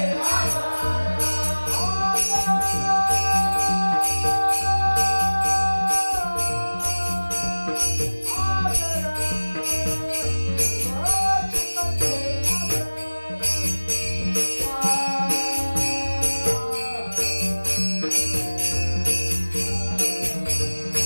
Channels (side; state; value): both; inverted; correlation -1.00